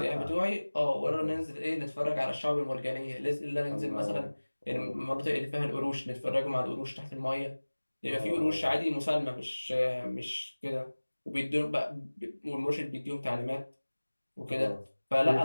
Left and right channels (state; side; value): inverted; both; correlation -1.00